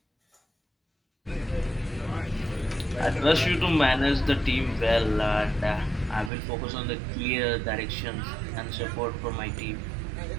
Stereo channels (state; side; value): drops out; left; at 6.3 s